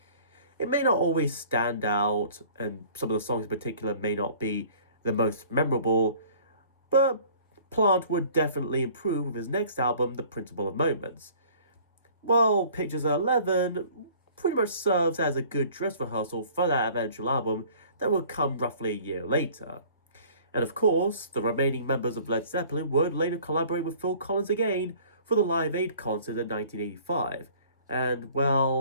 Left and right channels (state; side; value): inverted; both; correlation -0.51